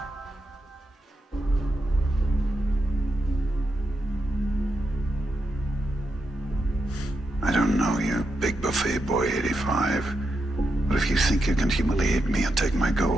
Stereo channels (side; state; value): both; normal; correlation 0.85